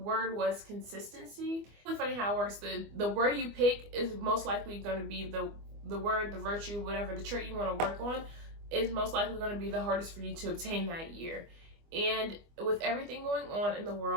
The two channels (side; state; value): left; late; 24 ms